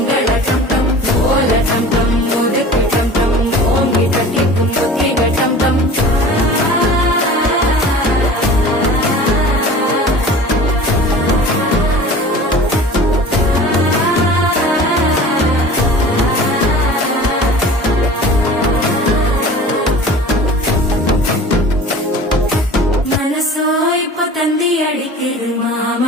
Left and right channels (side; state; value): both; normal; correlation 0.41